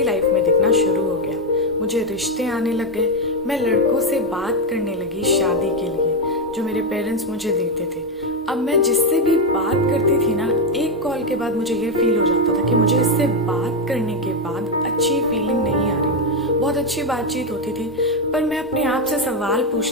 लाइफ में दिखना शुरू हो गया। मुझे रिश्ते आने लग गए, मैं लड़कों से बात करने लगी शादी के लिए, जो मेरे पेरेंट्स मुझे देते थे। अब मैं जिससे भी बात करती थी ना, एक कॉल के बाद मुझे ये फील हो जाता था कि मुझे इससे बात करने के बाद अच्छी फीलिंग नहीं आ रही। बहुत अच्छी बातचीत होती थी, पर मैं अपने आप से सवाल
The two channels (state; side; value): normal; both; correlation 0.06